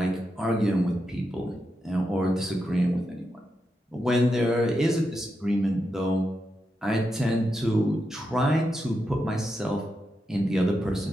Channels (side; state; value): both; normal; correlation 0.86